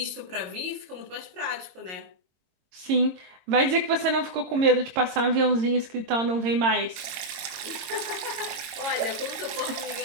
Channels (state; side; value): late; left; 22 ms